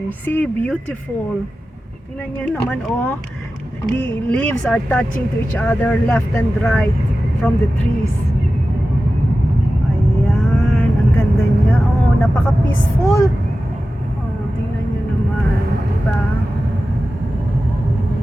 See, beautiful. Tingnan nyo naman, oh. The leaves are touching to each other left and right from the trees. Ayan, ang ganda niya. Oh, napaka-peaceful. Oh, tingnan nyo naman, diba?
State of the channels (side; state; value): both; normal; correlation 0.94